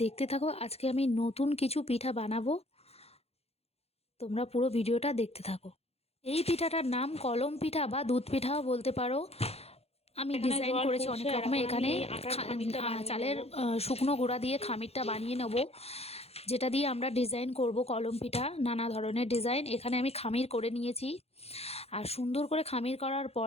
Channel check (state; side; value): late; right; 0.29 ms